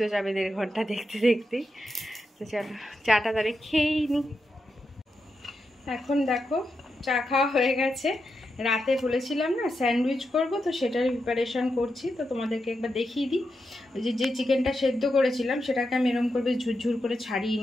যাবে 1.5 ঘন্টা দেখতে দেখতেই। তো চলো চাটা তাহলে খেয়েই নি। এখন দেখো চা খাওয়া হয়ে গেছে, রাতে বলেছিলাম না স্যান্ডউইচ করব, তো সেটার প্রিপারেশান করছি। তো তোমাদেরকে একবার দেখিয়ে দিই। যে চিকেনটা সেদ্ধ করেছিলাম সেটাকে আমি এরকম করে ঝুরঝুর করে ছাড়িয়ে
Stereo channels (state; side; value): normal; both; correlation 0.86